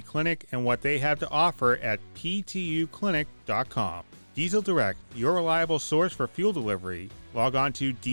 clinic and what they have to offer at ptuclinic.com. Diesel Direct, your reliable source for fuel delivery. Log on to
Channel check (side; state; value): both; inverted; correlation -1.00